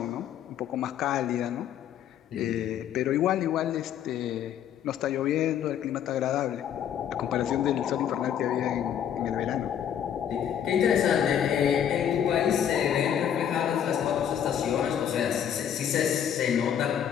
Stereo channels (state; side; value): quieter; right; 9.4 dB